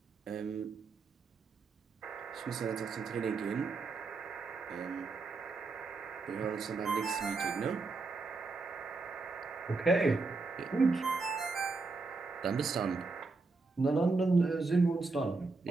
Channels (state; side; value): quieter; left; 3.9 dB